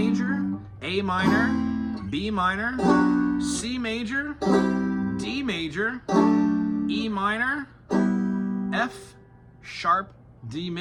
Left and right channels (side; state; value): both; identical; correlation 1.00